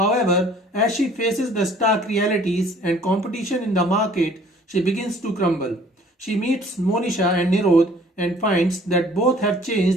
as she faces the stark realities and competition in the market, she begins to crumble. She meets Monisha and Nirod and finds that both have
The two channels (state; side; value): normal; both; correlation 0.55